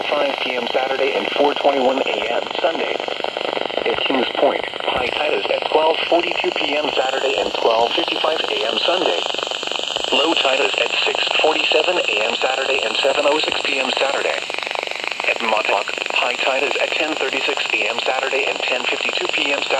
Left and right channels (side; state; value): both; identical; correlation 1.00